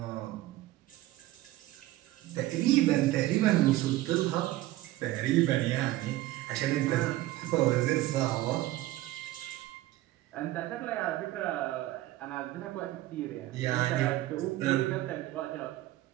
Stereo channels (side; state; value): left; quieter; 16.3 dB